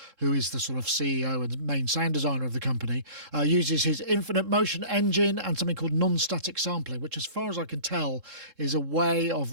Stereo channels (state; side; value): late; left; 3.7 ms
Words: who is the sort of CEO and main sound designer of the company. Uses his infinite motion engine and something called non-static sampling, which as far as I can tell is a way